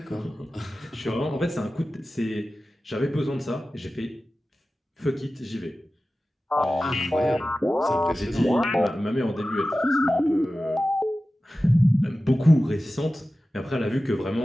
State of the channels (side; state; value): both; normal; correlation 0.95